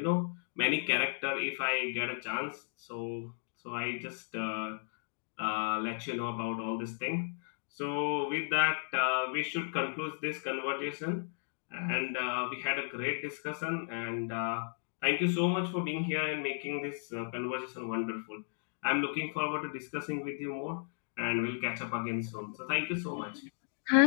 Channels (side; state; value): right; silent; digital silence